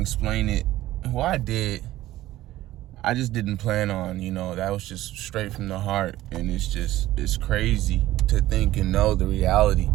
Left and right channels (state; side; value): quieter; left; 15.4 dB